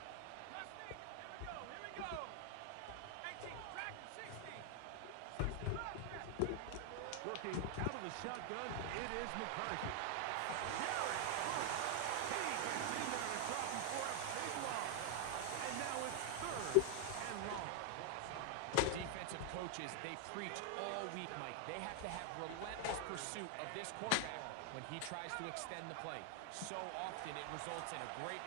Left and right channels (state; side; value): different; both; correlation 0.00